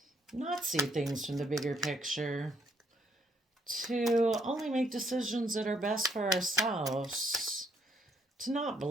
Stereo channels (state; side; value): normal; both; correlation 0.70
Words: not see things from the bigger picture, to only make decisions that are best for ourselves, to not